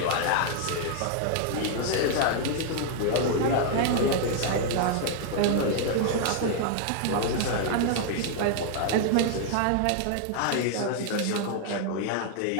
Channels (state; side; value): different; both; correlation 0.00